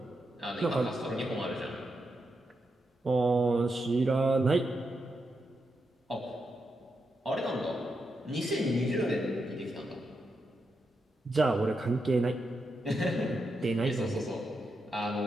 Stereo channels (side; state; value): both; normal; correlation 0.85